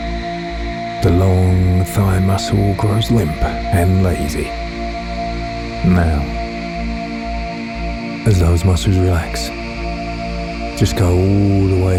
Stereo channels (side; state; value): both; identical; correlation 1.00